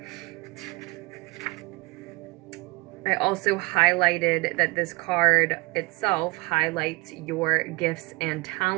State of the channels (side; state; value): left; quieter; 25.9 dB